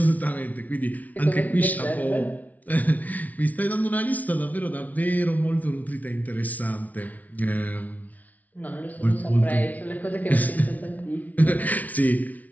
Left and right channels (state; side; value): late; right; 0.073 ms